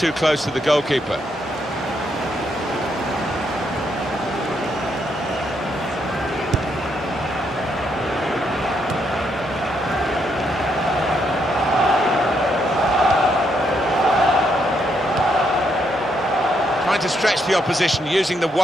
close to the goalkeeper. Trying to stretch the opposition, using the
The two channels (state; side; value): normal; both; correlation 0.76